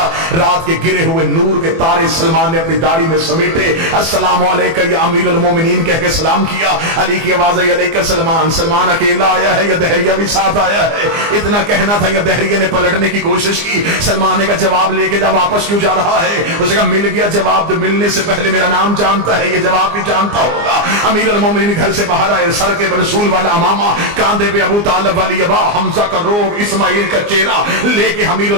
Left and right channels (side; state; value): left; late; 24 ms